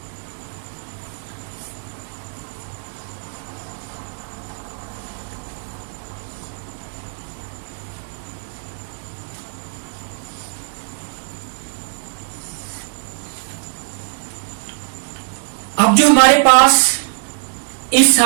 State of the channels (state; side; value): silent; left; digital silence